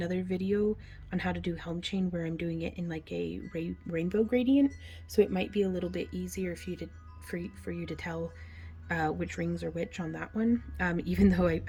video on how to do Helm chain where I'm doing it in like a rainbow gradient, so it might be a little bit easier for you to tell which rings are which on that one. Even though I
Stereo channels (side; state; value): both; identical; correlation 1.00